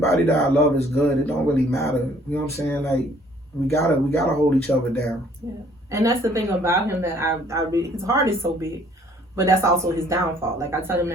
that I love is good, it don't really matter. You know what I'm saying? Like, we gotta hold each other down. Yeah. And that's the thing about him that I really, his heart is so big, but that's also his downfall. Like, I tell him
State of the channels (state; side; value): normal; both; correlation 0.59